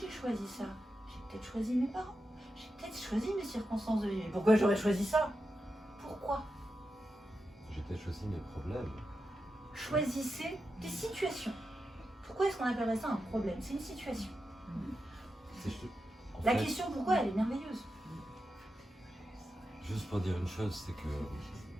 choisi ça, j'ai peut-être choisi mes parents, j'ai peut-être choisi mes circonstances de vie. Mais pourquoi j'aurais choisi ça? Pourquoi? J'ai peut-être choisi mes problèmes. Choisissez des situations. Pourquoi est-ce qu'on appellerait ça un problème? C'est une situation. En La fait, question pourquoi, elle est merveilleuse. juste pour dire une chose, c'est que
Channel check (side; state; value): both; normal; correlation 0.89